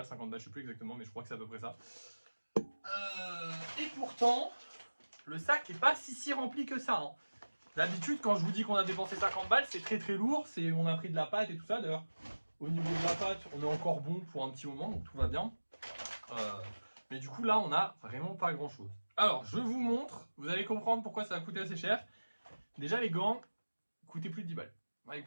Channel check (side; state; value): both; inverted; correlation -1.00